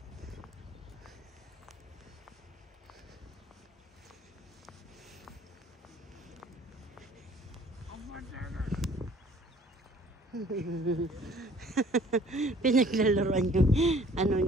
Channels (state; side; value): normal; both; correlation 0.54